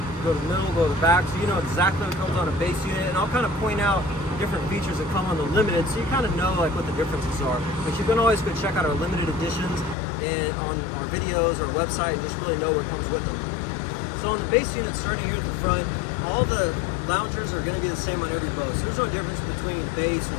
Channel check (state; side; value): drops out; right; at 10.0 s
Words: go to the middle, go to the back, so you know exactly what comes on a base unit, and I'll kind of point out different features that come on the limited, so you kind of know like what the differences are. But you can always go check out our limited editions and on our videos, our website, and just really know what comes with them. So on the base unit, starting here at the front, all the loungers are going to be the same on every boat, so there's no difference between base